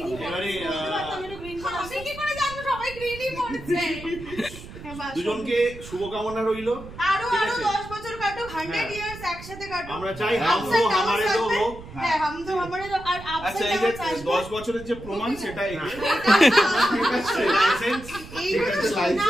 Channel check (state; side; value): noise; right; rumble, 15 dB below the sound